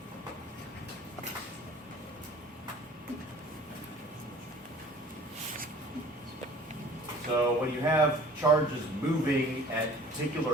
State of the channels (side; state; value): both; normal; correlation 0.48